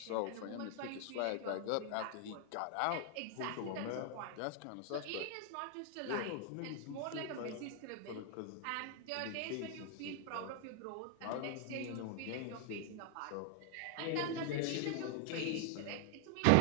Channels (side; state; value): both; different; correlation 0.00